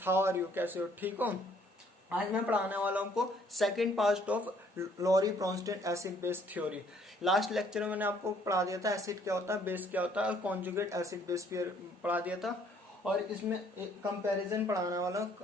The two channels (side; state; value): both; normal; correlation 0.63